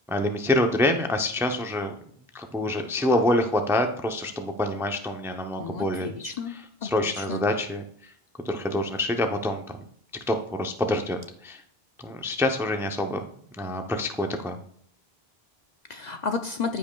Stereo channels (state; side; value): normal; both; correlation 0.47